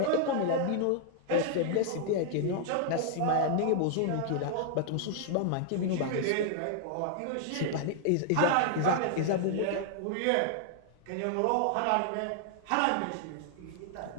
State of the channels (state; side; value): different; both; correlation -0.01